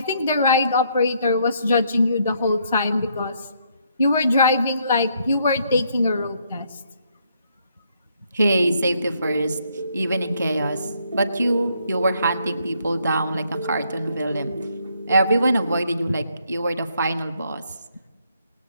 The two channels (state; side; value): inverted; both; correlation -0.71